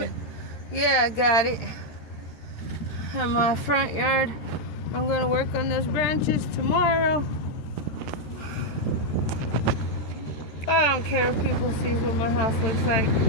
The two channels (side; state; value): right; late; 13 ms